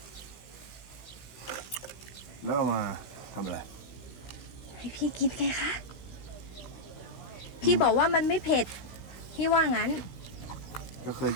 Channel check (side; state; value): right; late; 16 ms